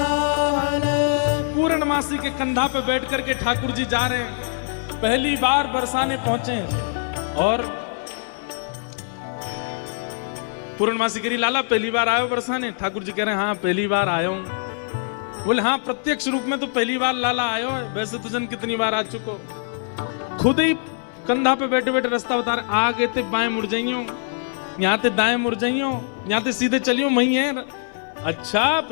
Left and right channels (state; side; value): silent; right; 63 dB below the other